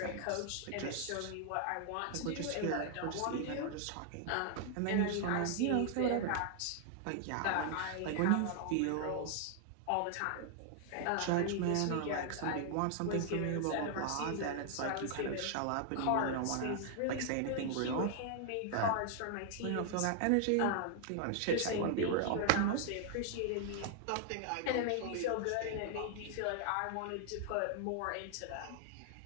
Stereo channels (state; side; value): different; both; correlation 0.00